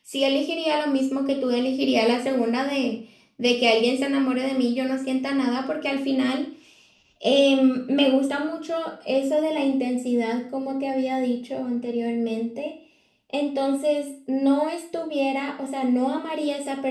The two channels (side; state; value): both; identical; correlation 1.00